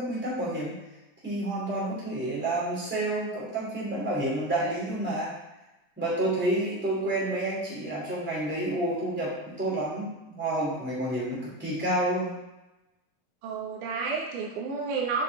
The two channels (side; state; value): both; normal; correlation 0.20